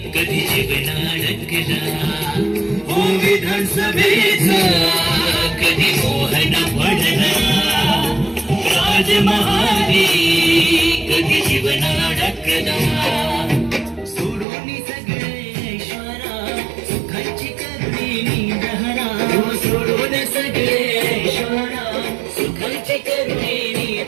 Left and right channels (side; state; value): left; drops out; at 14.5 s